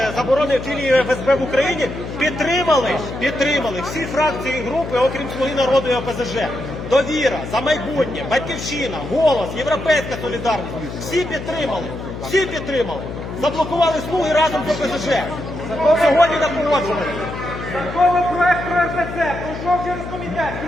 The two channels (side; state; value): left; noise; hum, 9 dB below the sound